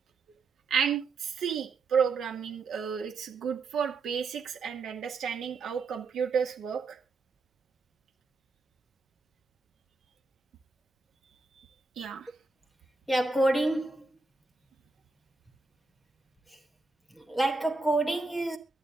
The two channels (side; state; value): left; quieter; 3.9 dB